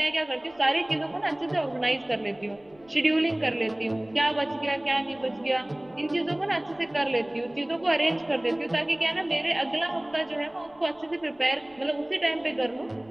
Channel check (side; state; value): left; noise; rumble, 29 dB below the sound